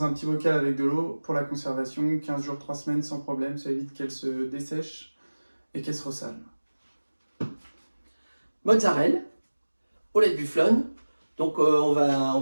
un petit bocal avec de l'eau pour la conservation, 15 jours, 3 semaines sans problème, ça évite qu'elle se dessèche et qu'elle se ressale. Mozzarella, au lait de bufflone. Donc on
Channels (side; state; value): both; inverted; correlation -1.00